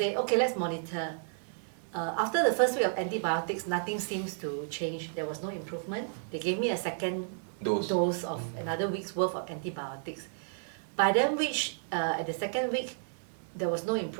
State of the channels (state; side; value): silent; left; 56 dB below the other